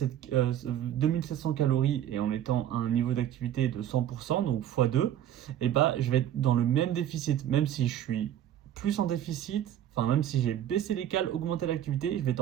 calories et en étant à un niveau d'activité de 100%, donc x2, et bah, je vais être dans le même déficit, même si je suis plus en déficit, enfin même si j'ai baissé les cales, augmenté l'activité, je vais être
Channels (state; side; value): quieter; left; 11.0 dB